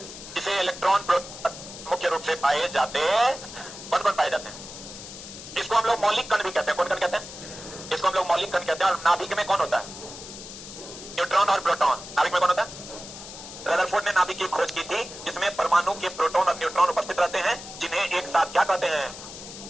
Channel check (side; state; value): left; noise; hiss, 13 dB below the sound